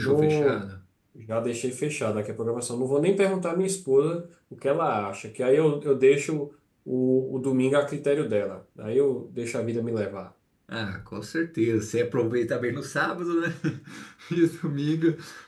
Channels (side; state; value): both; identical; correlation 1.00